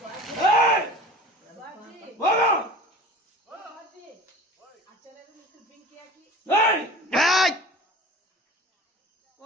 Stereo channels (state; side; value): normal; both; correlation 0.40